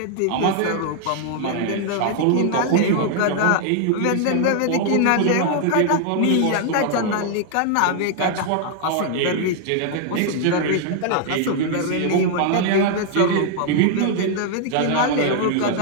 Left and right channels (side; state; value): both; different; correlation 0.00